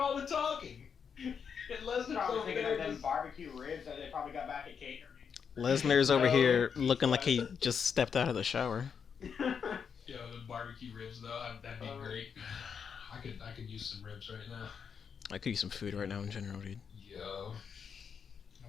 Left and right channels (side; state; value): right; quieter; 6.8 dB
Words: the talking. And Lesnar's Probably over thinking there of them just... barbecue ribs that they probably got back at catering. Lesnar's over here looking like he just stepped out of the shower. Yo, the barbecue ribs though, that'd be great. I could use some ribs right now. I could use some food right now in general, dude. Yo.